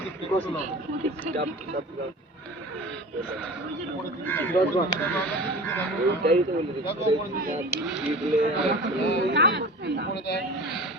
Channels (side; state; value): both; normal; correlation 0.36